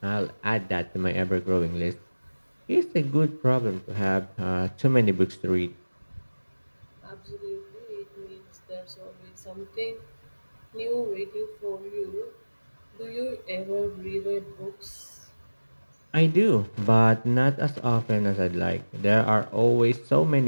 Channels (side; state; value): both; inverted; correlation -1.00